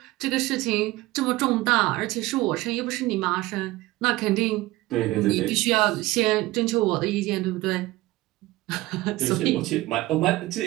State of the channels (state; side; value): quieter; left; 18.6 dB